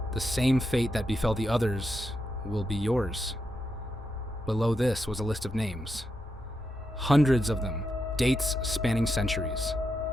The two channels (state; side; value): normal; both; correlation 0.84